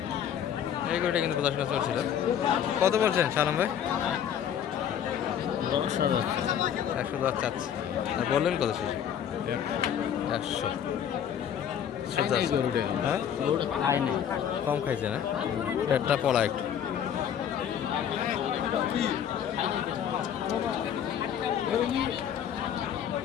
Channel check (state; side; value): quieter; right; 9.1 dB